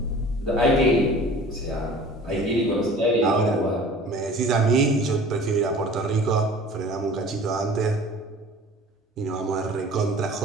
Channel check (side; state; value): both; normal; correlation 0.44